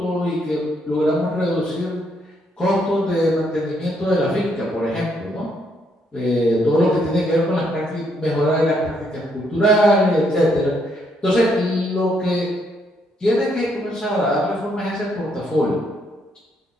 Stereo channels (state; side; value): normal; both; correlation 0.73